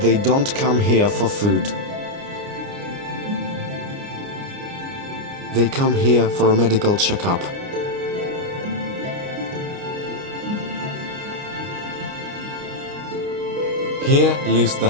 they don't come here for food. They come here for a medical checkup. Here lives the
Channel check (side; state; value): left; late; 29 ms